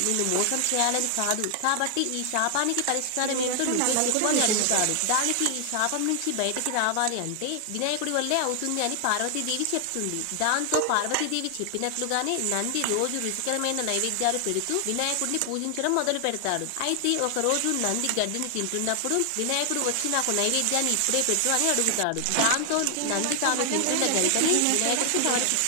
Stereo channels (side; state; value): both; different; correlation 0.00